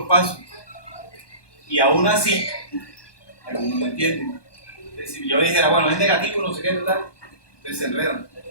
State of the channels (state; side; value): late; right; 1.2 ms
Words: paso. Y aún así, algunos no entienden. Si yo dijera, bueno, es negativo, no sé qué, tal, entonces se enredan.